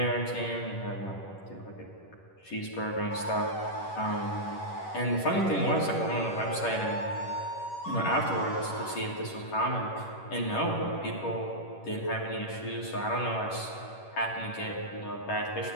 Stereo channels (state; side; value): late; right; 11 ms